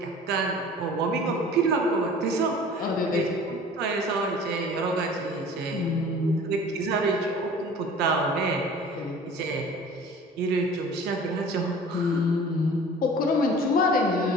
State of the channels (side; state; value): both; normal; correlation 0.44